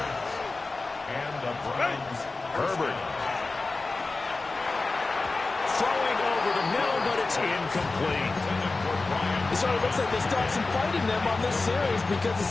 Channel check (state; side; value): quieter; right; 3.5 dB